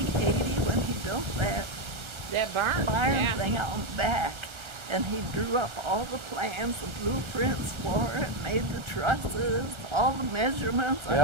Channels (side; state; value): left; late; 1.3 ms